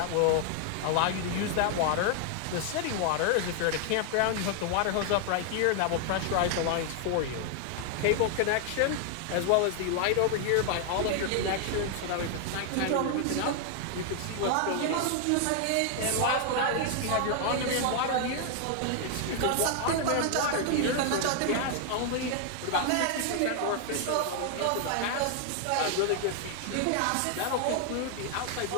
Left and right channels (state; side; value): different; both; correlation 0.00